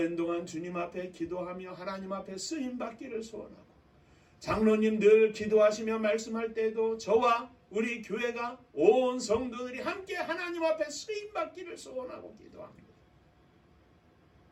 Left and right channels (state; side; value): identical; both; correlation 1.00